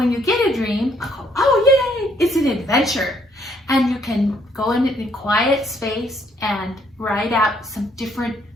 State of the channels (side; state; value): both; normal; correlation 0.68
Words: you get a dream, oh yay, it's an adventure. And you can go in a quiet space and write out some different